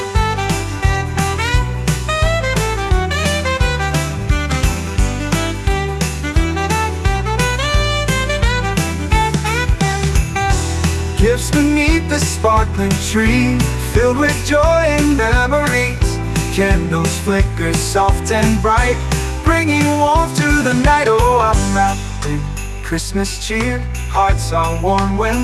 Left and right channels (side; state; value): both; identical; correlation 1.00